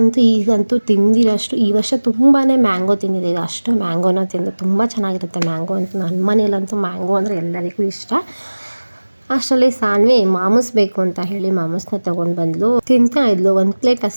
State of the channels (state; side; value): inverted; both; correlation -1.00